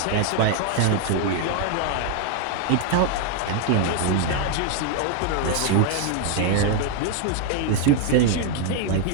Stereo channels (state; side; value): different; both; correlation 0.00